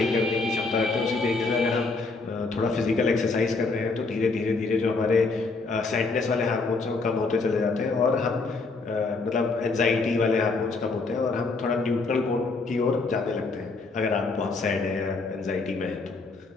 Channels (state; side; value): quieter; right; 3.9 dB